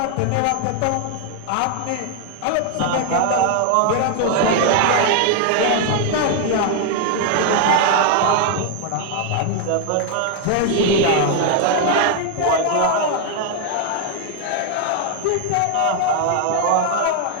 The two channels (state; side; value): different; both; correlation 0.01